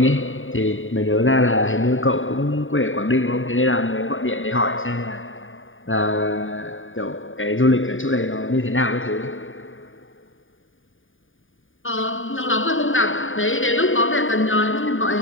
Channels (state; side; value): late; right; 0.58 ms